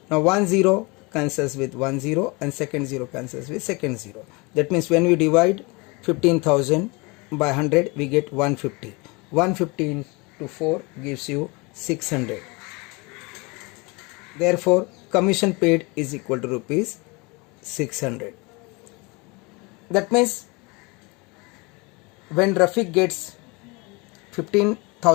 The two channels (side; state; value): right; quieter; 27.2 dB